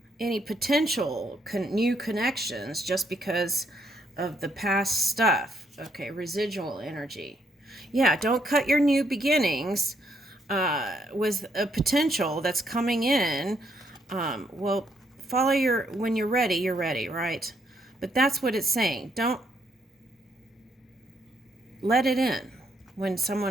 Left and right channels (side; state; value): both; normal; correlation 0.73